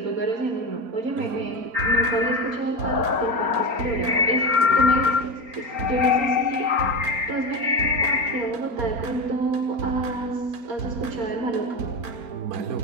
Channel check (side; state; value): left; late; 4.4 ms